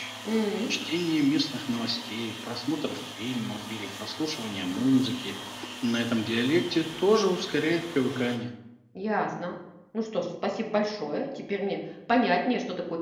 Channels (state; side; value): identical; both; correlation 1.00